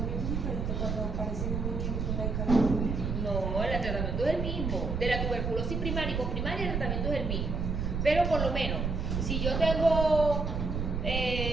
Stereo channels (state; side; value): noise; right; rumble, 1 dB below the sound